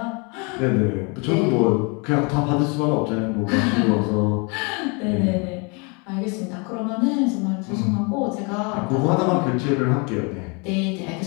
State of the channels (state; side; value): quieter; right; 32.1 dB